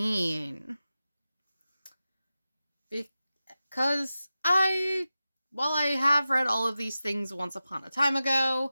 Because while I have read all of these things once upon a time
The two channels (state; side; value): inverted; both; correlation -0.94